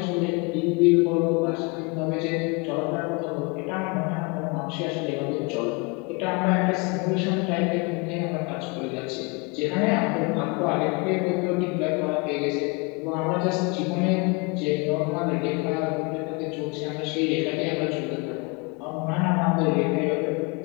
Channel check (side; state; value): right; quieter; 29.5 dB